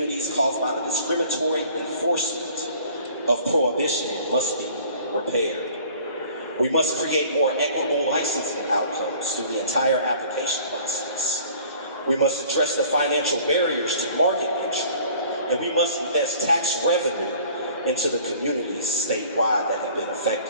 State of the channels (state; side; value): inverted; both; correlation -0.51